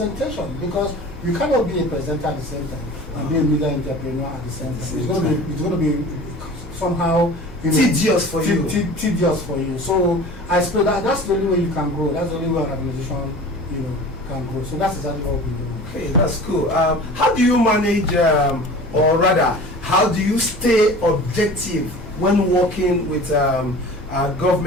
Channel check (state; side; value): normal; both; correlation 0.40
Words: because you cannot be a presenter at the same time and be a media entrepreneur at the same time. It's going to be somehow, you know, tedious for you. Tedious for you. So I suppose that's the only way you can grow. That's the only way an organization, you know, can grow. So that's exactly what we do. Okay, that's cool. How do you manage, or rather, how do you stay objective when working with